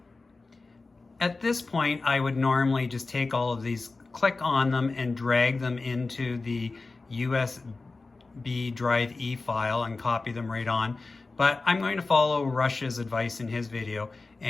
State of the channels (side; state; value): right; quieter; 3.7 dB